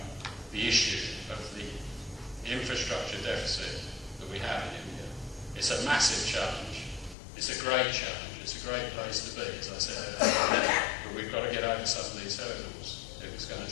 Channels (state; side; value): drops out; right; at 7.2 s